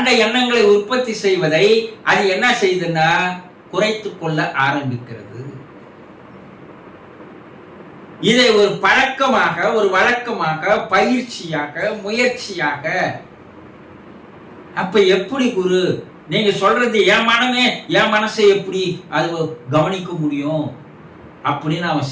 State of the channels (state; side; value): identical; both; correlation 1.00